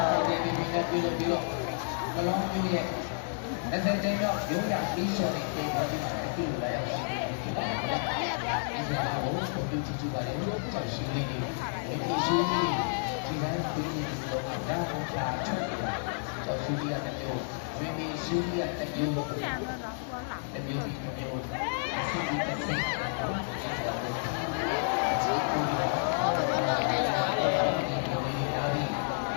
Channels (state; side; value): silent; right; digital silence